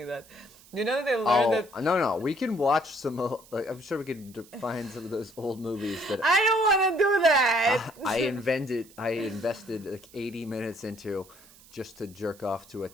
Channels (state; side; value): noise; right; hiss, 24 dB below the sound